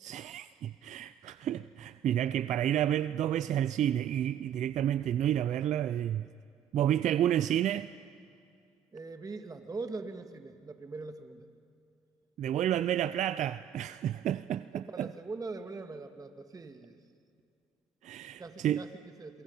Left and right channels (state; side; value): quieter; left; 10.2 dB